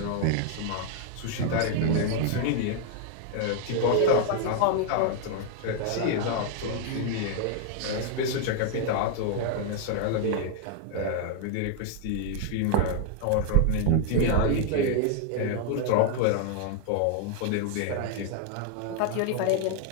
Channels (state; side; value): different; both; correlation 0.00